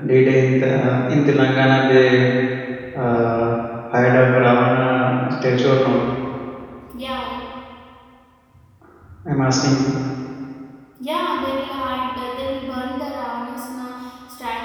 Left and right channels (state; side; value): identical; both; correlation 1.00